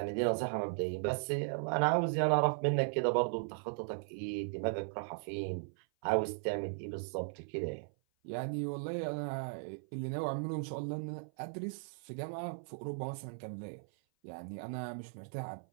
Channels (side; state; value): left; silent; 53 dB below the other